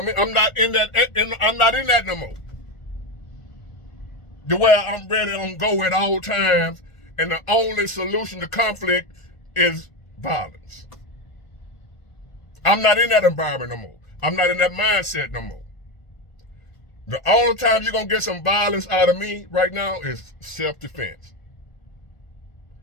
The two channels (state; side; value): late; right; 1.4 ms